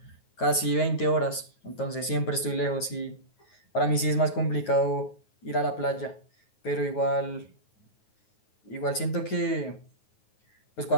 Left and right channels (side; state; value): right; late; 9.3 ms